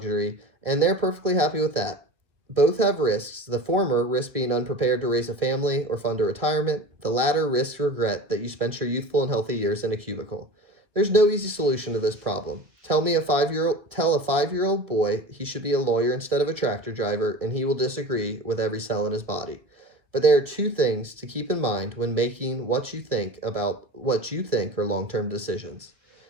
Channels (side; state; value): left; late; 1.9 ms